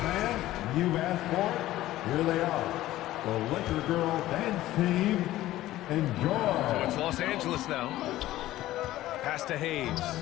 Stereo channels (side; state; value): right; quieter; 15.2 dB